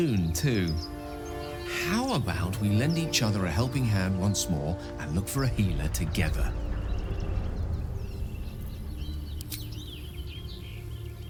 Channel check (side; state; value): both; identical; correlation 1.00